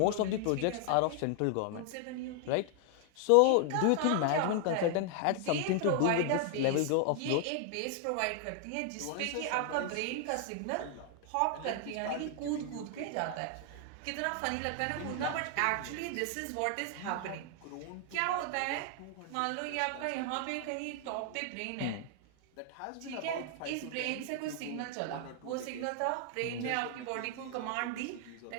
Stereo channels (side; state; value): both; different; correlation 0.00